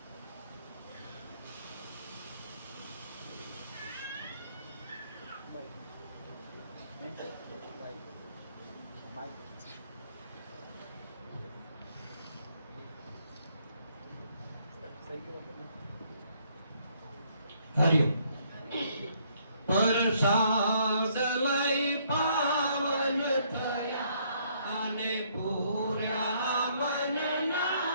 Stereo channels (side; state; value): both; inverted; correlation -0.68